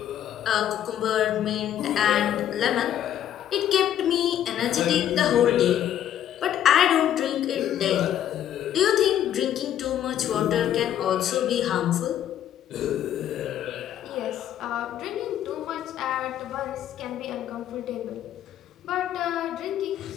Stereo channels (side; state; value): right; quieter; 10.9 dB